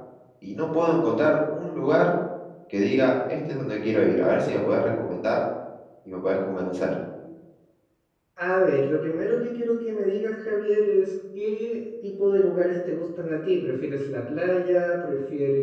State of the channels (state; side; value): identical; both; correlation 1.00